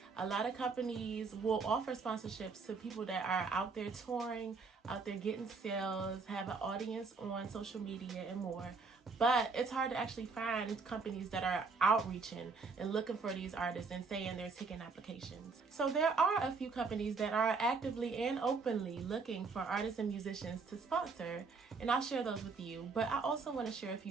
A lot of companies will offer sponsorships to people that are out there touring, out there getting sales, have an audience on social media and more. But it's hard to actually find companies that are outreaching and looking for these artists and saying they're taking applications. So there are a few companies that are actively and openly looking for artists and musicians to sponsor, and I'll share those with you. But I also want to share a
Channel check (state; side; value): quieter; left; 4.5 dB